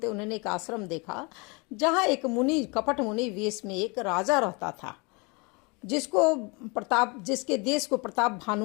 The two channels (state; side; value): quieter; right; 29.2 dB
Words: उन्होंने एक आश्रम देखा जहाँ एक मुनि, कपट मुनि वेश में एक राजा रहता था, जिसके देश को प्रताप